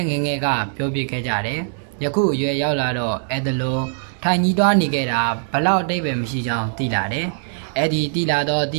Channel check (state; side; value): silent; left; digital silence